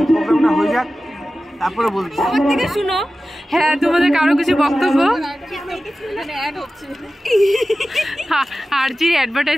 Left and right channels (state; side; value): normal; both; correlation 0.95